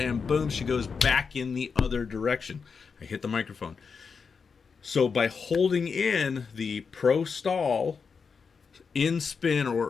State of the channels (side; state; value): right; quieter; 5.5 dB